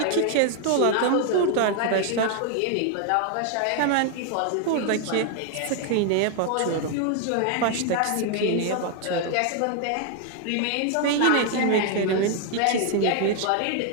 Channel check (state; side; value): different; both; correlation 0.00